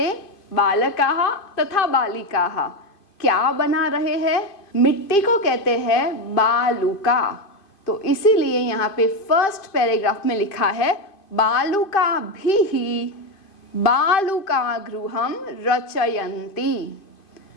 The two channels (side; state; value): right; late; 2.5 ms